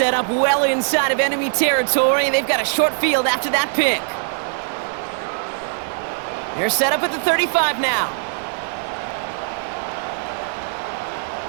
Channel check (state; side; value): silent; left; 65 dB below the other